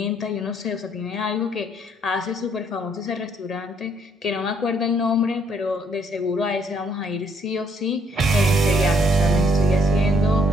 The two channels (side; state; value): both; normal; correlation 0.68